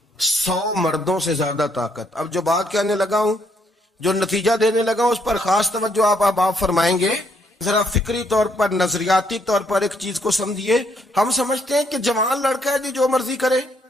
100 مردوں سے زیادہ طاقت. اب جو بات کہنے لگا ہوں، جو نتیجہ دینے لگا ہوں، اس پر خاص توجہ آپ فرمائیں گے. ذرا فکری طور پر، نظریاتی طور پر ایک چیز کو سمجھیے. ہم سمجھتے ہیں کہ جوان لڑکا ہے جی جو مرضی کرے،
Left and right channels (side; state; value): both; normal; correlation 0.71